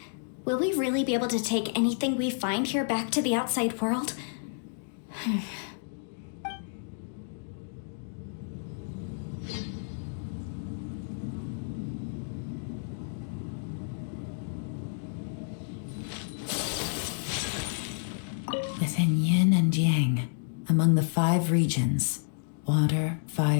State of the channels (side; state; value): right; silent; digital silence